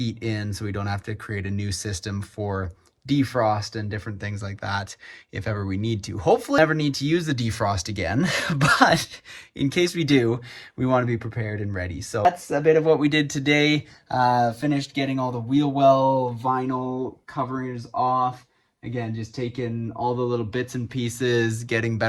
in, so we don't have to create a new system for defrost and different things like that if ever we need to. Hopefully never need to use the defrost again, but in case we do, we want to be prepared and ready. So that's a bit of what we did today. Finished getting all the wheel well vinyl coverings off. Again, just taking all the little bits and pieces, getting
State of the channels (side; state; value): both; identical; correlation 1.00